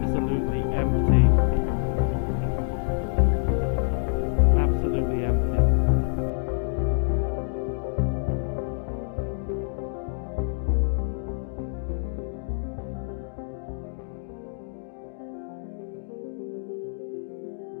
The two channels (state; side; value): silent; right; digital silence